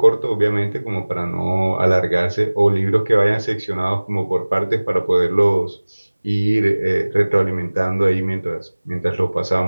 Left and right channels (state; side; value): inverted; both; correlation -1.00